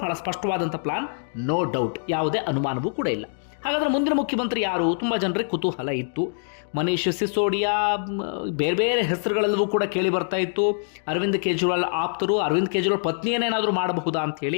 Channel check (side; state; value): right; silent; digital silence